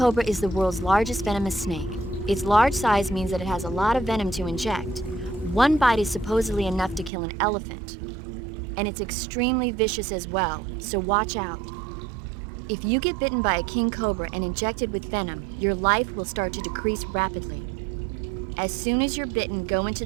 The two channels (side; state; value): left; drops out; at 7.1 s